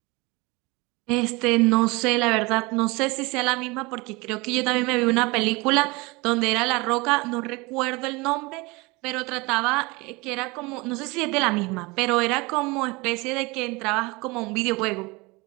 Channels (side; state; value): left; quieter; 25.0 dB